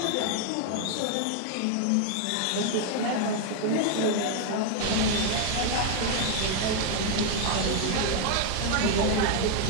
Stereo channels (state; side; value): different; both; correlation 0.00